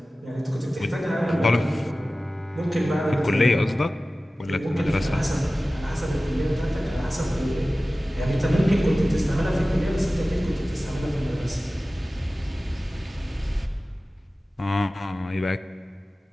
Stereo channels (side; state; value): both; normal; correlation 0.96